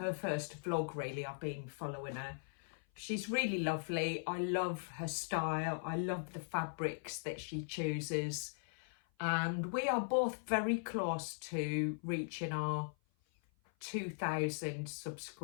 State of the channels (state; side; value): silent; right; 52 dB below the other